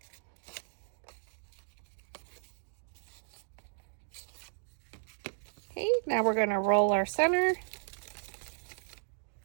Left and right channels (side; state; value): left; silent; digital silence